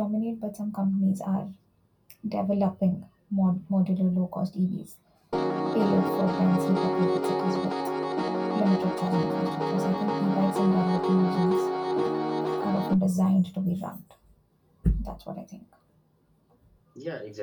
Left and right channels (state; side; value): identical; both; correlation 1.00